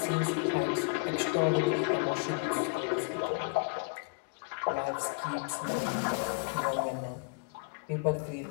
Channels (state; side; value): quieter; right; 35.4 dB